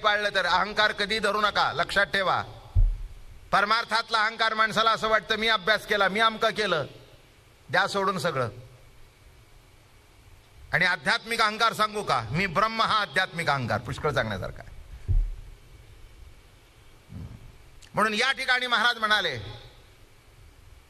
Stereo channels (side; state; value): both; identical; correlation 1.00